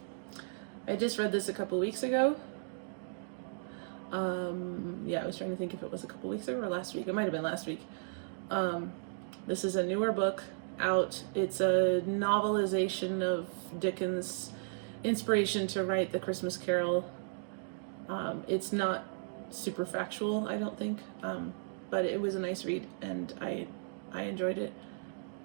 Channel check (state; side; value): silent; left; digital silence